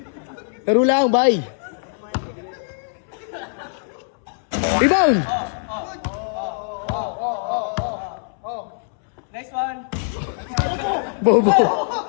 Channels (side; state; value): right; silent; 64 dB below the other